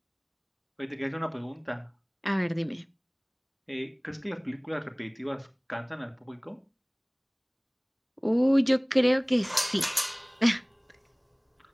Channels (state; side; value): identical; both; correlation 1.00